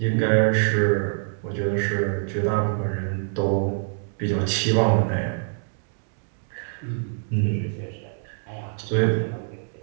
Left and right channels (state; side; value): silent; left; digital silence